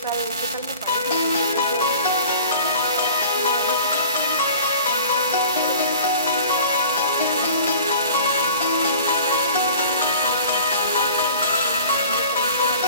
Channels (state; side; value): inverted; both; correlation -0.45